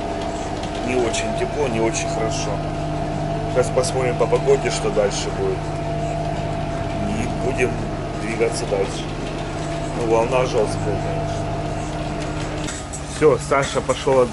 очень тепло, не очень хорошо. Сейчас посмотрим по погоде, что дальше будет. И будем двигаться дальше. Ну, волна жесткая, конечно. Все, Саша пошел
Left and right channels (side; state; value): both; identical; correlation 1.00